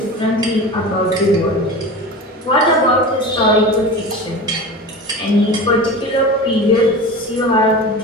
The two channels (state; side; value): normal; both; correlation 0.31